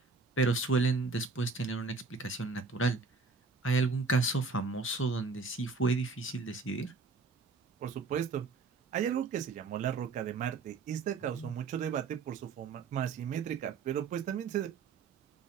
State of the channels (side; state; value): left; quieter; 4.4 dB